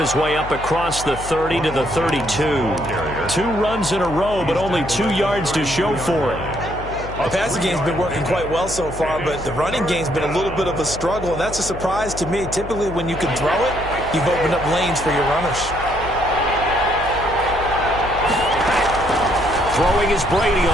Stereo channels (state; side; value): noise; left; hum, 11 dB below the sound